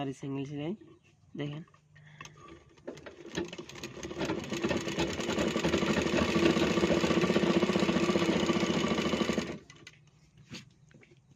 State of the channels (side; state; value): both; identical; correlation 1.00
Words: সিঙ্গেল সেলাই, দেখেন।